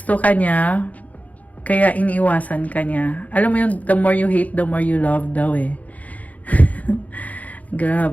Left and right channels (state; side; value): late; right; 0.073 ms